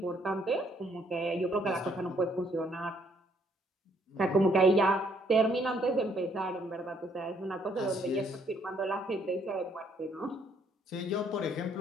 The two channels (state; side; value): normal; both; correlation 0.67